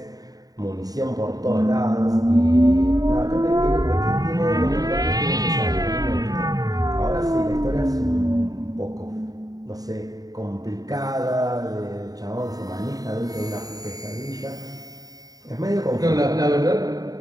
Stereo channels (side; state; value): left; late; 0.18 ms